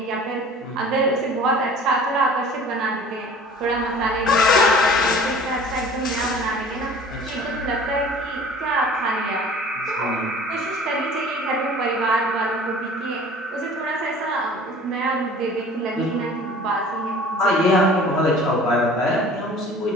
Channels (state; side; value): normal; both; correlation 0.46